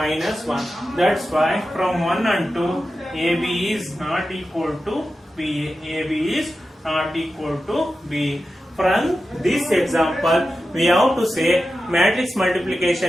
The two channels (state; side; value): normal; both; correlation 0.92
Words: 1. That's why from 1 and 2, AB is not equal to BA. AB is not equal to BA. From this example, we have to say matrix